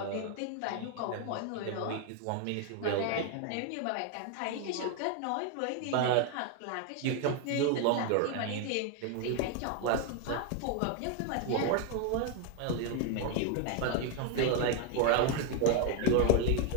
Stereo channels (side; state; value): both; different; correlation 0.01